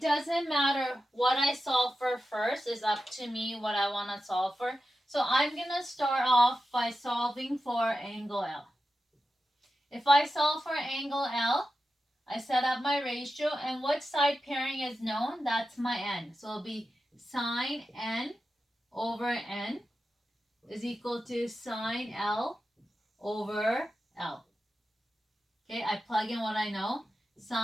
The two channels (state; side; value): normal; both; correlation 0.91